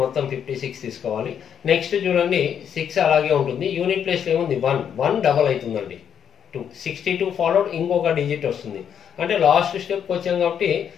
మొత్తం 56 తీసుకోవాలి. నెక్స్ట్ చూడండి 6 అలాగే ఉంటుంది. యూనిట్ ప్లేస్లో ఏముంది 1 డబల్ అవుతుందండి. 62 ఫాలోడ్ ఇంకొక డిజిట్ వస్తుంది. అంటే లాస్ట్ స్టెప్కి వచ్చాం కాబట్టి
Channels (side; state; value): right; quieter; 8.4 dB